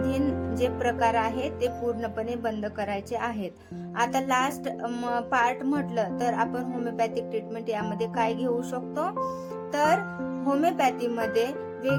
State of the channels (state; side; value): identical; both; correlation 1.00